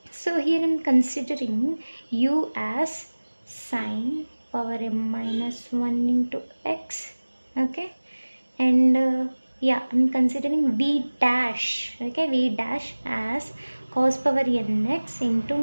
so here I'm considering u as sine power m minus 1 into x. Okay, and yeah, I'm considering v dash. Okay, v dash as cos power nx into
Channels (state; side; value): inverted; both; correlation -1.00